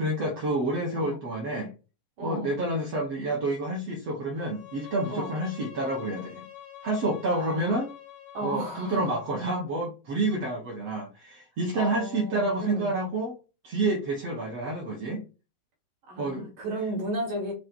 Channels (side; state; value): left; late; 7.8 ms